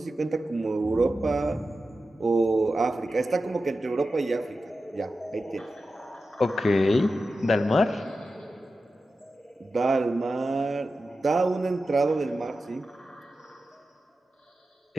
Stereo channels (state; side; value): normal; both; correlation 0.92